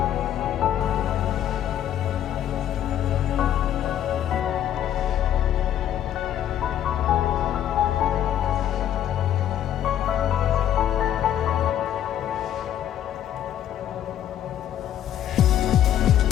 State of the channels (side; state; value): right; quieter; 10.8 dB